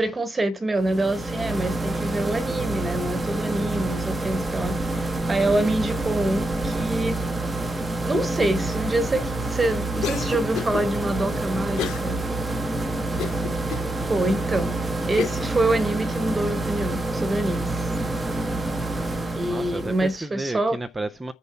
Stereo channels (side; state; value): both; normal; correlation 0.86